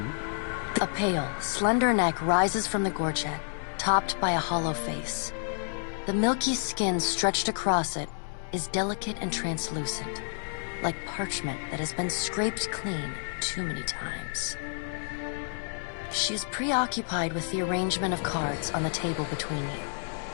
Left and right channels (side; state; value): right; silent; digital silence